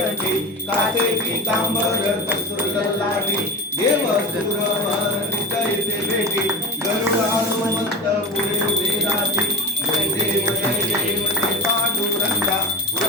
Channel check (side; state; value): both; normal; correlation 0.27